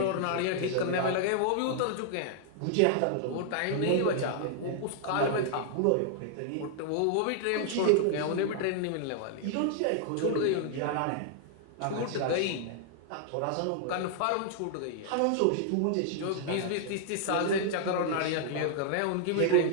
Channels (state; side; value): different; both; correlation -0.01